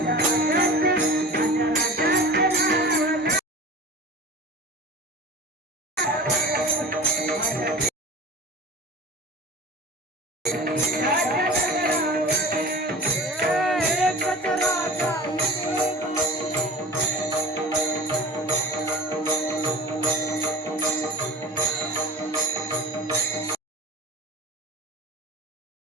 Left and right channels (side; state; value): both; normal; correlation 0.36